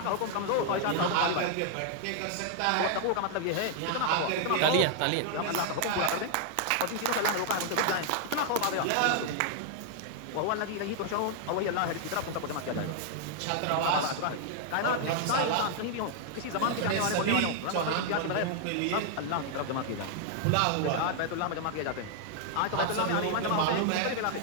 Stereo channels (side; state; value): both; different; correlation 0.00